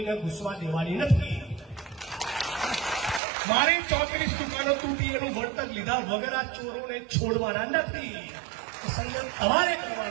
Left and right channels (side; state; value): left; drops out; at 3.2 s